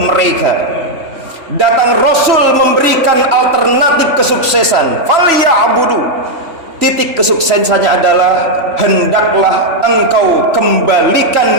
datang Rasul memberikan alternatif kesuksesan. Falyabudu, titik kesuksesannya adalah hendaklah engkau kembalikan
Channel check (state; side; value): late; left; 3.1 ms